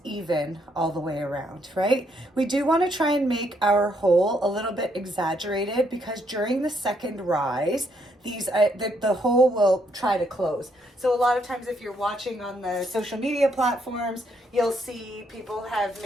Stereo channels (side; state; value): both; normal; correlation 0.73